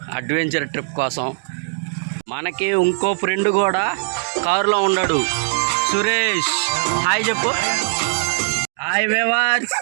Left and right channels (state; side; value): silent; left; digital silence